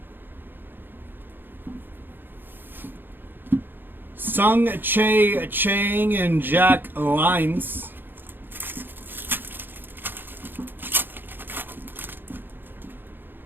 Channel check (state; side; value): late; left; 0.097 ms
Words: Sung Che Chang and Jack Lines.